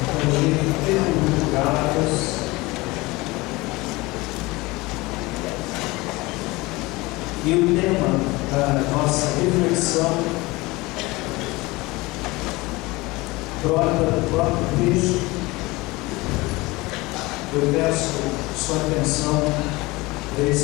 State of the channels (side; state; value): right; quieter; 22.1 dB